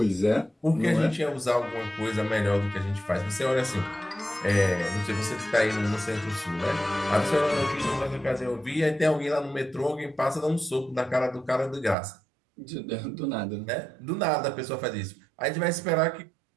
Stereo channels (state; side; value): drops out; left; at 12.0 s